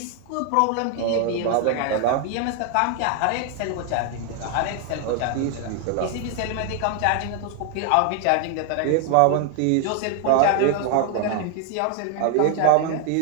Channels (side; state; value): both; different; correlation 0.00